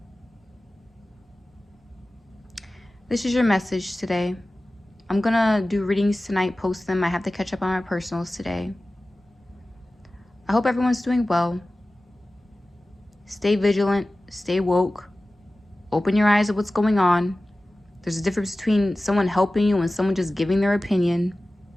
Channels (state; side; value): normal; both; correlation 0.96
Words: This is your message today. I'm going to do readings tonight, post them. I have to catch up on my personals today. I hope everyone's doing well. Stay vigilant. Stay woke. Open your eyes to what's going on. There's a difference between someone helping you and someone just giving their opinion.